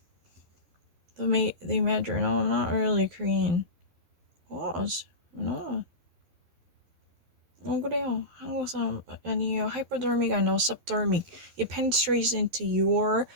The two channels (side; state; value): left; late; 12 ms